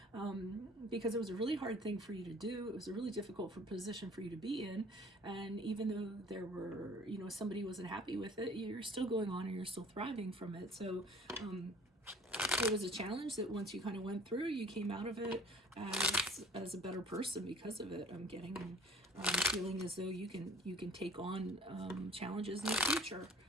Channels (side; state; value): both; normal; correlation 0.52